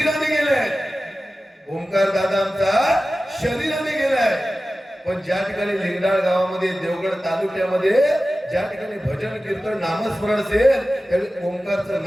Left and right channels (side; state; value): both; normal; correlation 0.95